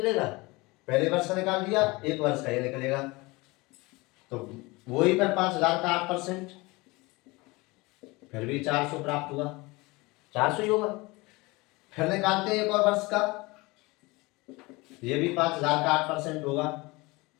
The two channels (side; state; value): right; quieter; 23.5 dB